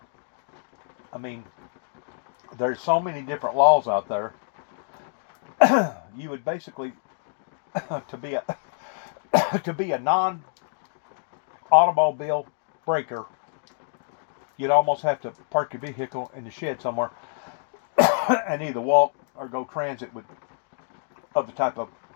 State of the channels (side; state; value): right; silent; 60 dB below the other